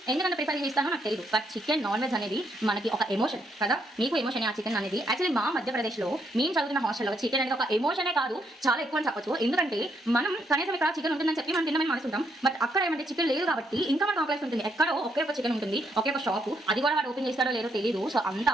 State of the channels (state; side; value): normal; both; correlation 0.75